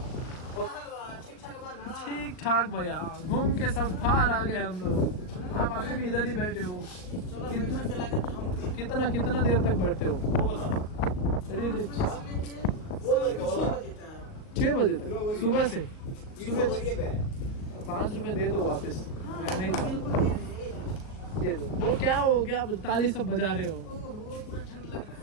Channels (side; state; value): right; late; 38 ms